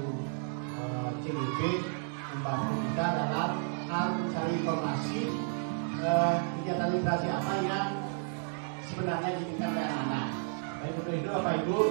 CDP membantu kita dalam hal mencari informasi kegiatan literasi apa yang sebenarnya diinginkan oleh anak-anak. Baik, untuk itu Bapak Ibu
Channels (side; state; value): left; silent; 56 dB below the other